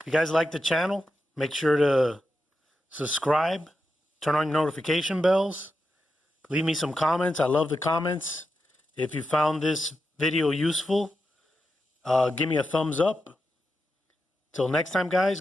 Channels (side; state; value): both; normal; correlation 0.88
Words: you guys like the channel, make sure to subscribe, turn on your notification bells, leave me some comments. I love the comments. If you found this video useful, give me a thumbs up. Till next time, guys,